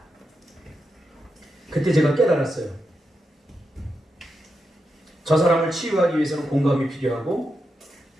그때 제가 깨달았어요. 저 사람을 치유하기 위해서는 공감이 필요하고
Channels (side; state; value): both; normal; correlation 0.86